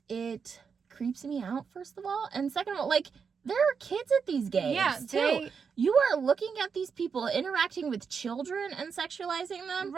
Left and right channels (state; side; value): quieter; left; 6.0 dB